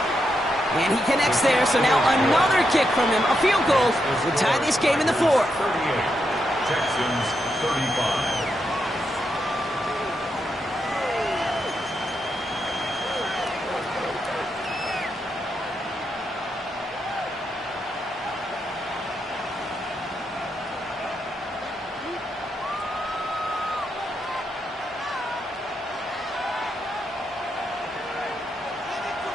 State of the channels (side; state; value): both; normal; correlation 0.83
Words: And he connects there, so now another kick from him. A field goal will tie this game in the 4th. 38. Texans 35.